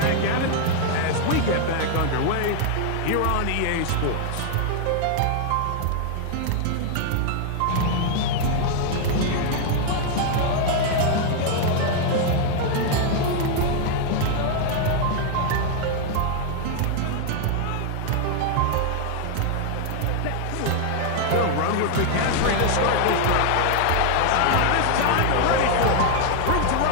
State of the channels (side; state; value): both; different; correlation 0.00